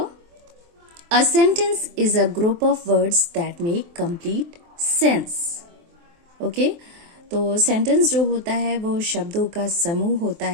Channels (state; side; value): late; left; 23 ms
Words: A sentence is a group of words that make complete sense. Okay? तो sentence जो होता है वो शब्दों का समूह होता